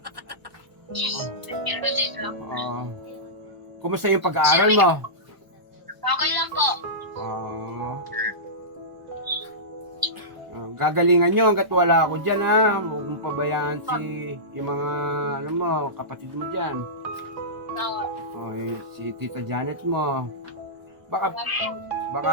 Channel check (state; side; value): late; left; 1.0 ms